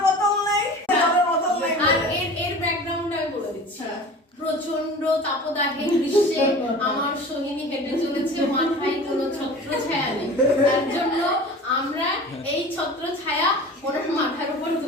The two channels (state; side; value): normal; both; correlation 0.39